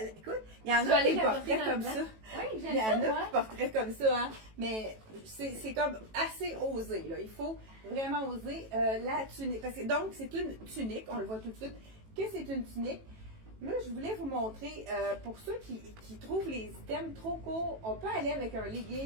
écoute, il y en a qui porteraient comme ça. Oui, Il j'aime y en ça, a moi. qui porteraient comme ça, hein. Mais c'est comme assez osé, là. Il faut vraiment oser la tunique. Parce que, donc, c'est une tunique, on le voit tout de suite, que c'est une tunique. Là, je voulais vous montrer, pour ceux qui trouvent les items trop courts, on peut aller avec un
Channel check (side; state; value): left; late; 18 ms